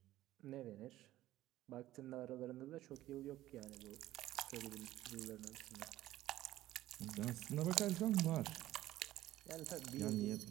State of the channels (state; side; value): quieter; left; 14.9 dB